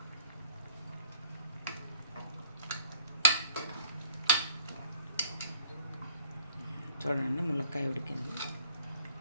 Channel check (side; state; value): both; inverted; correlation -0.55